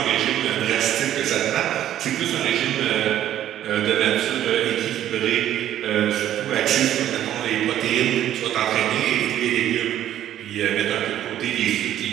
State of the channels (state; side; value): quieter; left; 11.8 dB